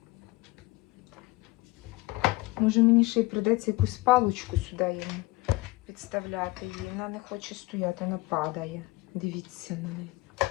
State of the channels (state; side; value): quieter; right; 21.7 dB